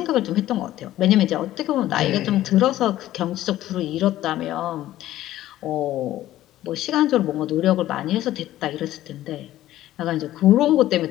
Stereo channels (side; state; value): right; quieter; 14.2 dB